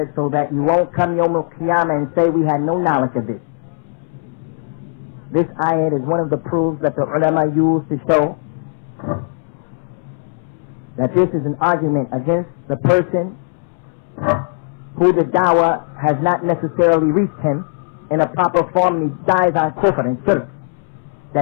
so that you won't come Yawm al-Qiyamah and say we had no knowledge of this. This ayat is one of the proofs that the ulama use to show that this is an argument against the person who the dawah has not necessarily reached him in a proper form, and he dies on kufr and shirk,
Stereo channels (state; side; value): silent; right; 67 dB below the other